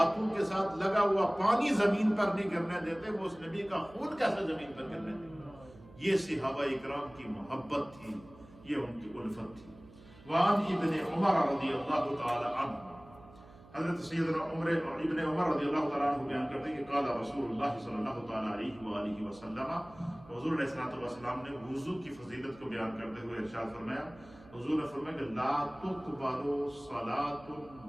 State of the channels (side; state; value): right; noise; hum, 22 dB below the sound